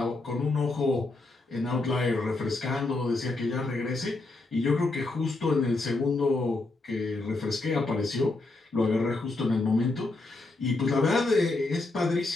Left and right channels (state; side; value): quieter; right; 3.2 dB